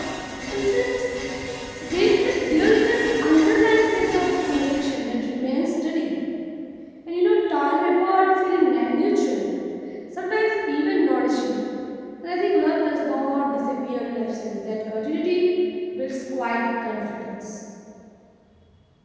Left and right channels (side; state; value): both; identical; correlation 1.00